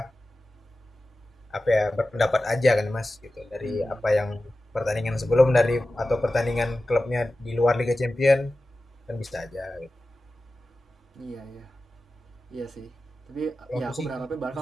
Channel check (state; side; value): normal; both; correlation 0.94